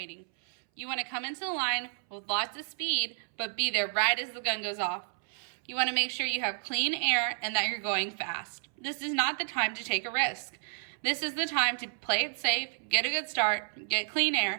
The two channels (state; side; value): silent; left; 57 dB below the other